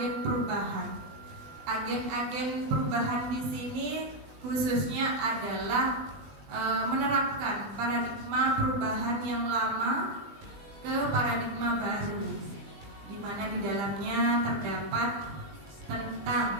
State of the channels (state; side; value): late; left; 20 ms